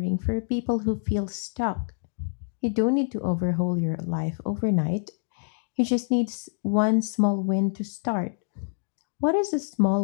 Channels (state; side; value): silent; right; digital silence